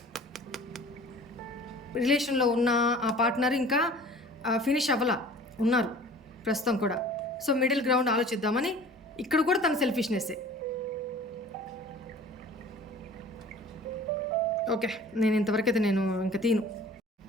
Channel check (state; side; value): normal; both; correlation 0.46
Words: రిలేషన్లో ఉన్న ఆ పార్ట్నర్ ఇంకా ఫినిష్ అవ్వలా ఉన్నారు ప్రస్తుతం కూడా. సో మిడిల్ గ్రౌండ్ ఆలోచిద్దామని ఇక్కడ కూడా తన సెల్ఫిష్నెస్సే. ఓకే, నేను ఇంతవరకు అయితే నేను ఇంకా తీను.